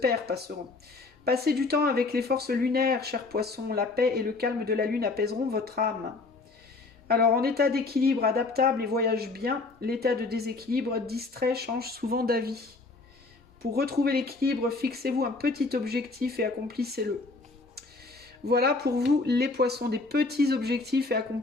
passeront. Passer du temps avec les forces lunaires, cher poisson, la paix et le calme de la lune apaiseront votre âme. Alors, en état d'équilibre adaptable et voyage bien, l'état de déséquilibre distrait change souvent d'avis. Pour retrouver l'équilibre, fixez-vous un petit objectif et accomplissez-le. Voilà pour vous les poissons, des petits objectifs et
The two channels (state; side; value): quieter; right; 3.7 dB